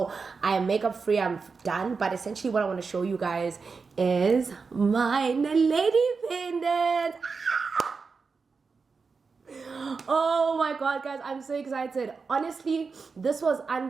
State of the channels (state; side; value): quieter; left; 4.9 dB